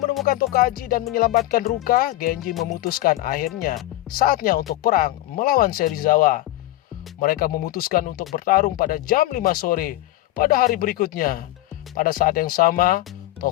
Tokaji dan menyelamatkan Ruka, Genji memutuskan akhirnya saatnya untuk perang melawan Serizawa. Mereka memutuskan untuk bertarung pada jam 5 sore pada hari berikutnya. Pada saat yang sama,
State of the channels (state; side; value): quieter; right; 16.3 dB